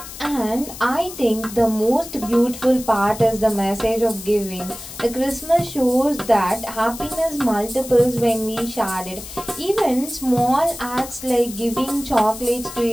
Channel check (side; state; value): left; noise; hiss, 13 dB below the sound